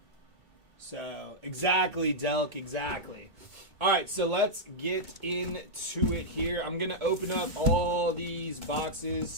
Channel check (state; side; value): late; left; 2.2 ms